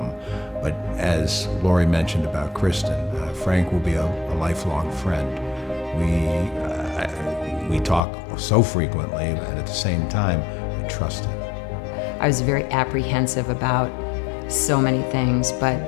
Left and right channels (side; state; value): right; drops out; at 8.0 s